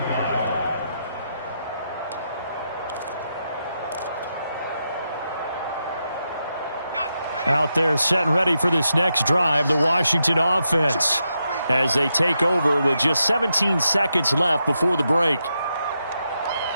line. Out there set and ready for this next drive, the Washington offense, as they take over with just 17 seconds left before the break.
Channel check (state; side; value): inverted; both; correlation -0.85